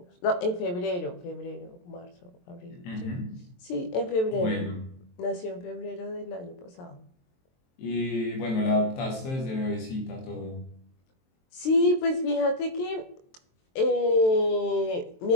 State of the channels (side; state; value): right; late; 23 ms